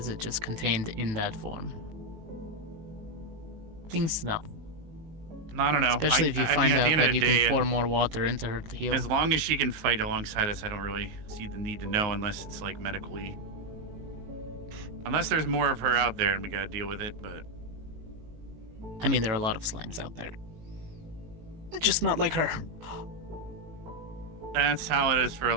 it just contained in that form? Things to know. I don't know. Especially if you I find mean, at out the end of that the you day, can pour more water into her to heal. As long as she can fight alongside us, I don't really see the need to know unless it's like medically. Unless there's more of her out there and we gotta deal with it, but. I mean, there are a lot of slimes out there. Just not like her. That's how it is for a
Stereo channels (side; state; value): left; late; 19 ms